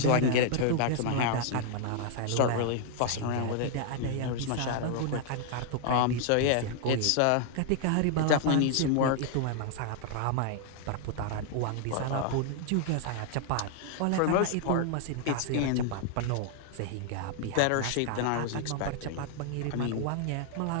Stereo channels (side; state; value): both; different; correlation 0.00